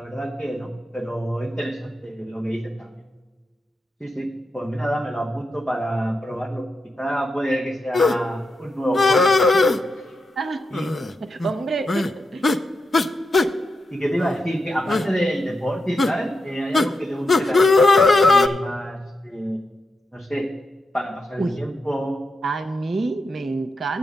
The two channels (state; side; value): normal; both; correlation 0.86